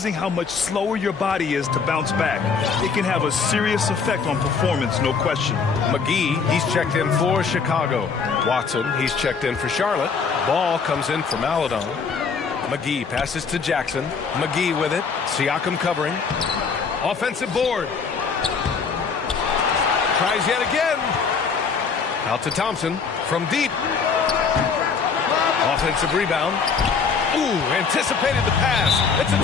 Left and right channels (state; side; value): quieter; right; 5.5 dB